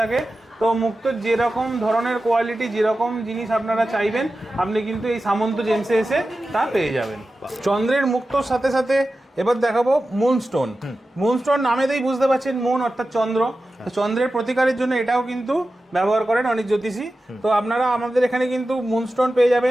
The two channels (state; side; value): normal; both; correlation 0.94